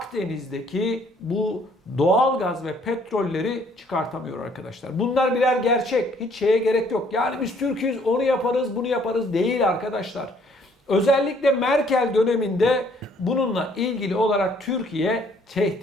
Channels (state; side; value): normal; both; correlation 0.63